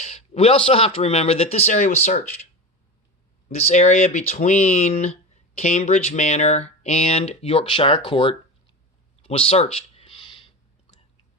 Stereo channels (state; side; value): normal; both; correlation 0.26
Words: we also have to remember that this area was searched. This area between Cambridge Manor and Yorkshire Court was searched.